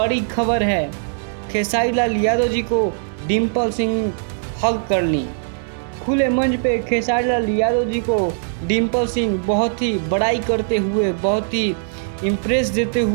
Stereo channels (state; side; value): silent; left; digital silence